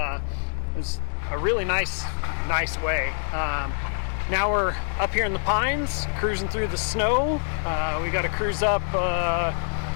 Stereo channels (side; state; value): right; silent; digital silence